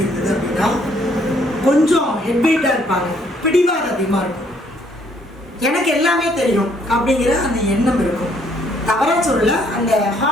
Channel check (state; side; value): normal; both; correlation 0.66